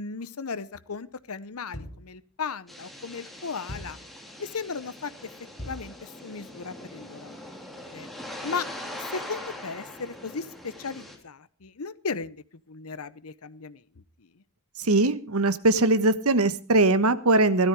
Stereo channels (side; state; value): both; normal; correlation -0.12